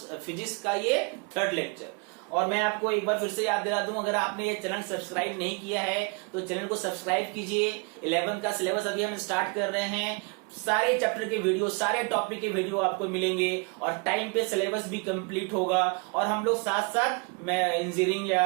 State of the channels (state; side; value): quieter; left; 32.3 dB